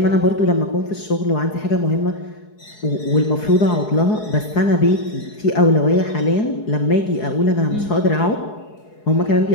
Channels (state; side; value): late; right; 4.7 ms